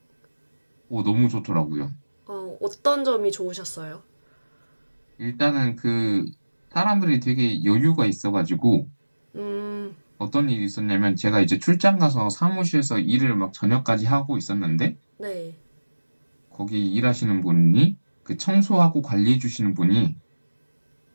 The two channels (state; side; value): inverted; both; correlation -1.00